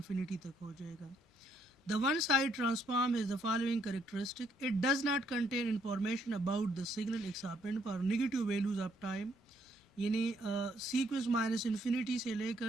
तक हो जाएगा। The one side transform is the following characteristic. It does not contain information about the signal exponent for negative values of time, यानी सीक्वेंस माइनस इन्फिनिटी से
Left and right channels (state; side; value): normal; both; correlation 0.70